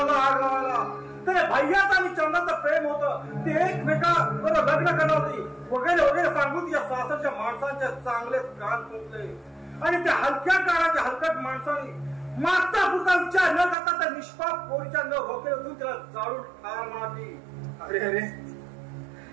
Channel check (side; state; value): left; drops out; at 13.8 s